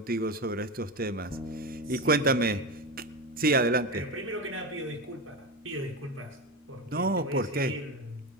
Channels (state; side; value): normal; both; correlation 0.19